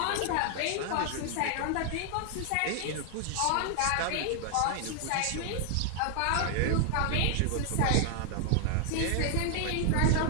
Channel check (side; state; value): both; different; correlation 0.00